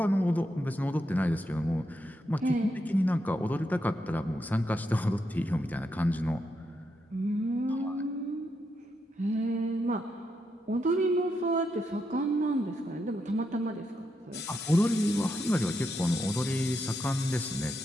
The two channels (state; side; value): normal; both; correlation 0.82